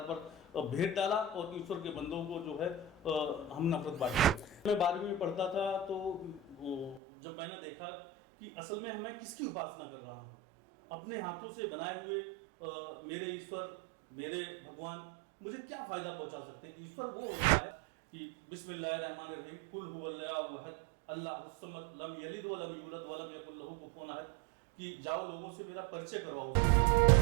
पर भेद डाला और ईश्वर के बंदों को जो है हम नफरत बांटी। मैं 12वीं में पढ़ता था तो जब मैंने देखा कि असल में मैं किसकी उपासना कर रहा हूँ, अपने हाथों से बनाए हुए मेरे ईश्वर, मेरे भगवान मुझे क्या फ़ायदा पहुँचा सकते हैं। ईश्वर वो होता है कि बिस्मिल्लाहिर्रहमानिर्रहीम, कुल हुवल्लाहु अहद, अल्लाहुस समद, लम यलिद व लम यूलद व लम यकुल लहू कुफुवन अहद, कि जाओ लोगों से मेरा परिचय करवाओ।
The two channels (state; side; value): drops out; left; at 7.0 s